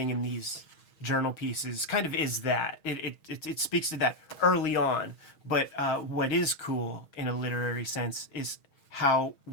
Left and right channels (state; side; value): late; right; 6.3 ms